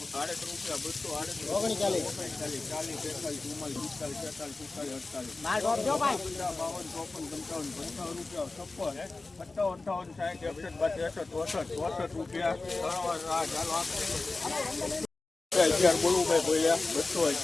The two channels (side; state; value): right; quieter; 3.5 dB